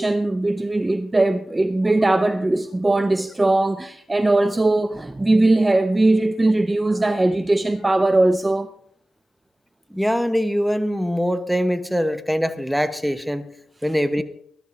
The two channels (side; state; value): both; normal; correlation 0.98